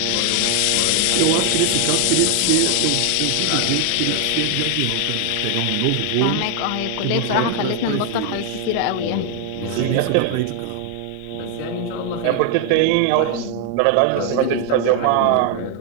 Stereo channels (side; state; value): both; different; correlation 0.00